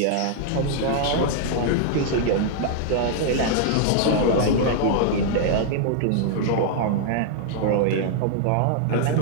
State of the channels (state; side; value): different; both; correlation 0.00